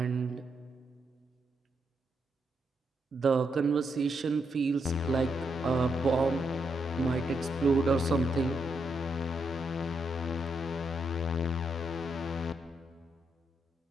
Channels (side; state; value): both; normal; correlation 0.80